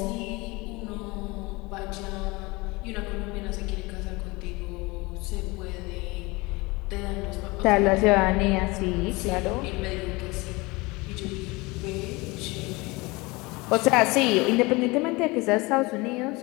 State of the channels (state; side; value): quieter; right; 24.1 dB